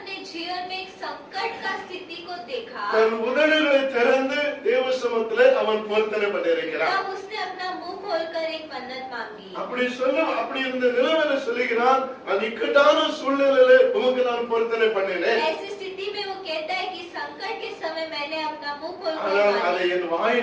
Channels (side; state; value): both; identical; correlation 1.00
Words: जीवन में एक संकट का स्थिति को देखा, தன் உதடுகளை திறந்து தேவ சமூகத்திலே அவன் பொருத்தனை பண்ணியிருக்கிறான். तब उसने अपना मुंह खोलकर एक मन्नत मांगी. அப்படி இருந்த நிலைமையில சொல்லுகிறான், அந்த இக்கட்டான சூழ்நிலையில உமக்கு நான் பொருத்தனை பண்ணினேன். ऐसी स्थिति में वो कहता है कि संकट के समय मैंने अपना मुंह खोलकर ஆனால் அதை मानी என்